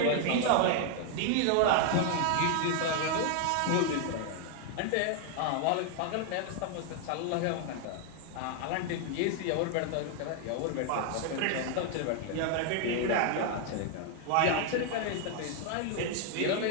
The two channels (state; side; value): different; both; correlation 0.00